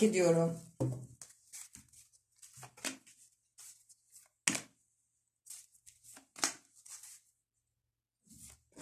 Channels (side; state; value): both; identical; correlation 1.00